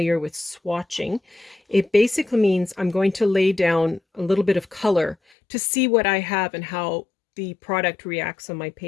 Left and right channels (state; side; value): drops out; right; at 5.2 s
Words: with swatching, it basically means I'm going to lay down a little bit of color to see what I have and how the product reacts on my